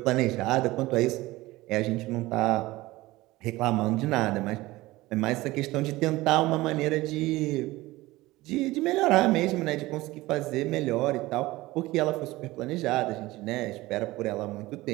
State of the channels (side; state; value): left; quieter; 19.0 dB